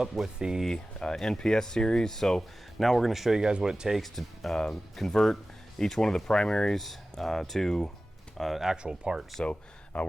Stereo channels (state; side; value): normal; both; correlation 0.96